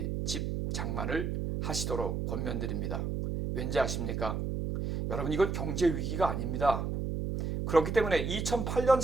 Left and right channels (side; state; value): right; noise; hum, 2 dB below the sound